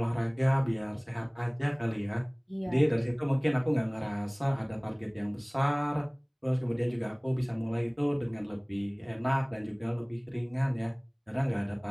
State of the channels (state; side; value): identical; both; correlation 1.00